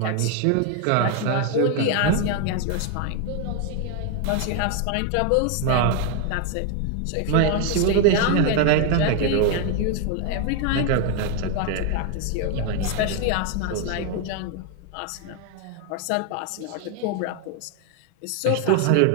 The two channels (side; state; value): both; different; correlation 0.01